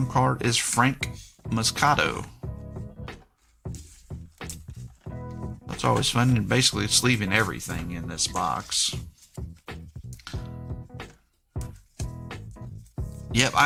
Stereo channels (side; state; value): both; identical; correlation 1.00